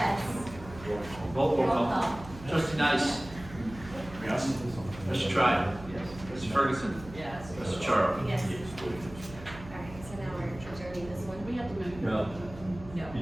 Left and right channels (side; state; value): right; noise; hum, 15 dB below the sound